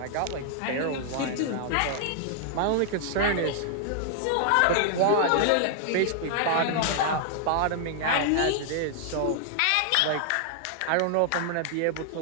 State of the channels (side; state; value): both; different; correlation 0.00